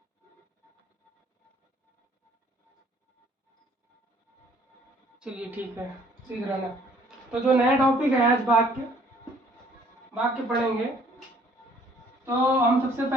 चलिए ठीक है, सीख रहना। तो जो नया टॉपिक है आज वाक्य पढ़ेंगे। तो हम सबसे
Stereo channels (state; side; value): normal; both; correlation 0.59